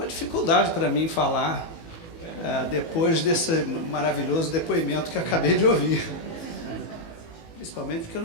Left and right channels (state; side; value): late; right; 18 ms